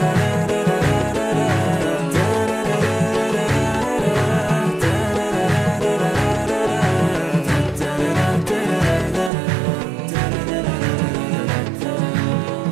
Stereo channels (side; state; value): left; drops out; at 9.3 s